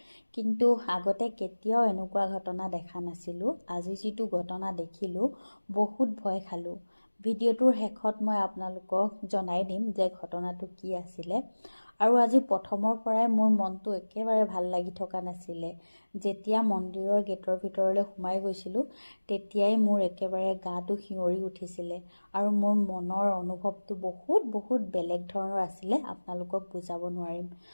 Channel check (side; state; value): both; inverted; correlation -1.00